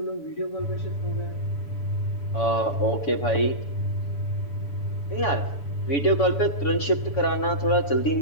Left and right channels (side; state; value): right; late; 7.0 ms